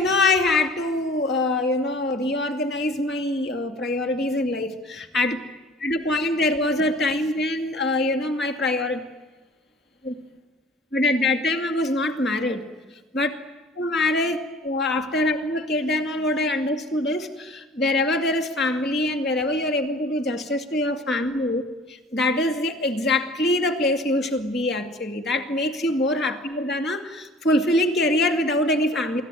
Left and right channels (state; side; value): normal; both; correlation 0.48